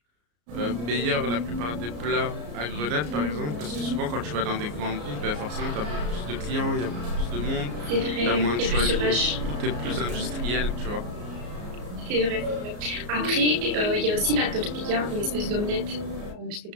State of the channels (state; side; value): late; left; 34 ms